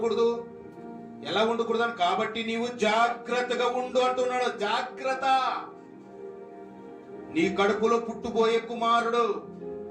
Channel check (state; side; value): identical; both; correlation 1.00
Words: ఎలా ఉండకూడదు అని. కాబట్టి నీవు జాగ్రత్తగా ఉండు అంటున్నాడు. జాగ్రత్త. నీ కడుపులో పుట్టుబోయే కుమారుడు